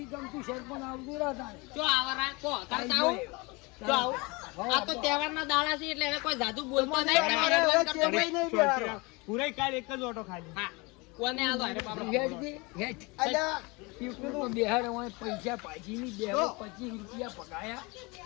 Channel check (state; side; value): quieter; right; 26.5 dB